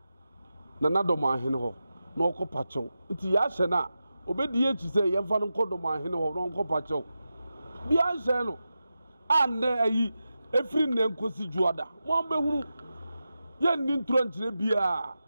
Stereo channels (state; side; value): inverted; both; correlation -0.91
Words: na dormaahene ho na okɔ pachew nti ya hye na obedi echi se ye mfa no kɔ dormaahene ho na okɔ pachew bia hye no ande ayi efiri ne nkosi juada mo ambehunu ye nni ntro nkyere bia